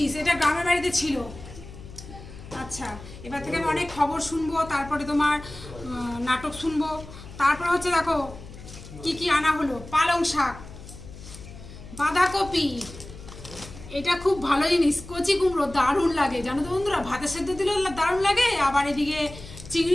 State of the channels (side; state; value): left; noise; hum, 16 dB below the sound